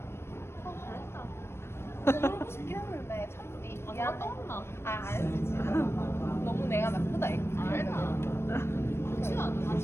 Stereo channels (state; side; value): late; right; 0.12 ms